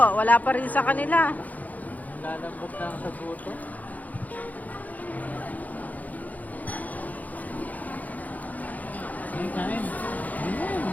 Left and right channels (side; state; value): right; late; 0.078 ms